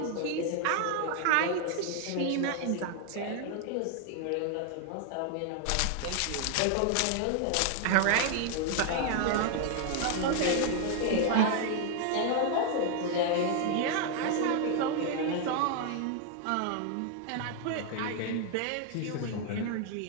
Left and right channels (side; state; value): both; different; correlation 0.00